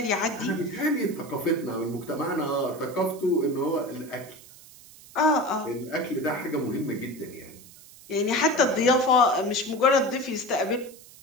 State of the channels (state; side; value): noise; right; hiss, 21 dB below the sound